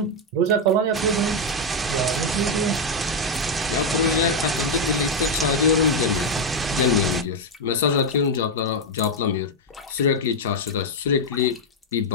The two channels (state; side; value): normal; both; correlation 0.04